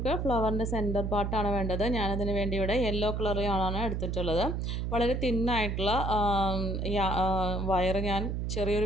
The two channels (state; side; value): noise; right; hum, 1 dB below the sound